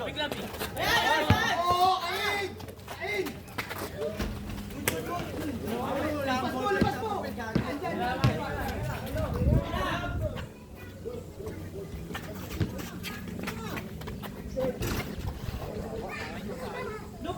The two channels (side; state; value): both; identical; correlation 1.00